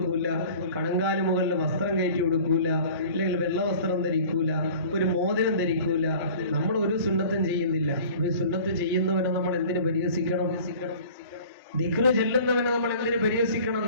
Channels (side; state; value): both; inverted; correlation -0.45